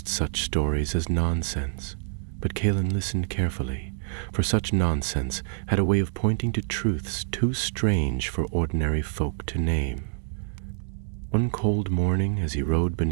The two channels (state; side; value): silent; left; digital silence